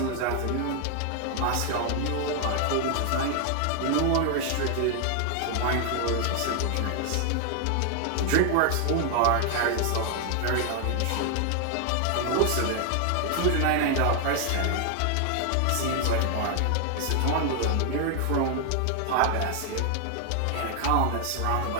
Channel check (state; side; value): different; both; correlation 0.00